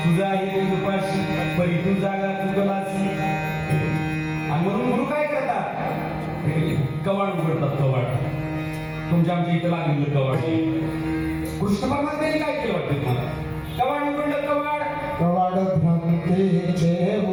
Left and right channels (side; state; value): both; identical; correlation 1.00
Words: तुझा आहे उपाशी परी तू जागा चुकलासी. आणि म्हणून गुरु काय करतात कवाड उघडतात. कवाड तुमच्या आमच्या इथं लागलेलं कवाड. कृष्ण परमात्म्याने काय केलं वाटतं तुम्हाला. कवाड उघडलं कवाड. कवाड भ्रांतीचे